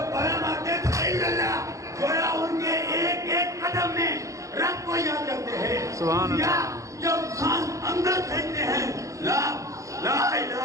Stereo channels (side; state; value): left; late; 0.15 ms